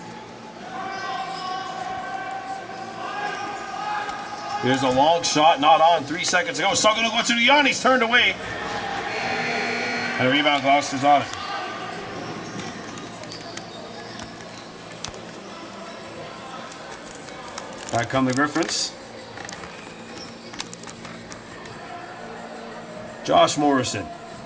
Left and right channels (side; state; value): both; identical; correlation 1.00